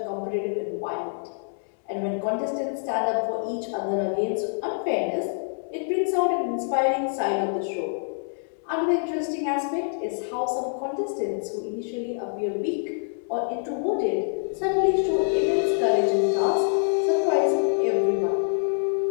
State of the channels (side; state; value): right; silent; digital silence